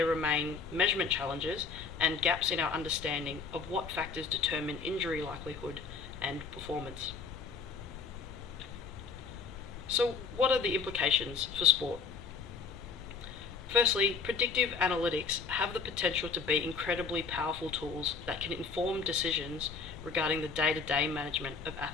remain measurement challenges and gaps in our understanding of what factors determine injury likelihood and performance. So, what are the implications for sport? Firstly, predictive analytics have the potential to be incredibly powerful tools that can inform decisions regarding the day-to-day management of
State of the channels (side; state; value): right; quieter; 5.1 dB